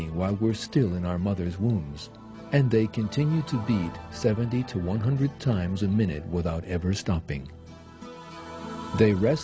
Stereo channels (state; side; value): identical; both; correlation 1.00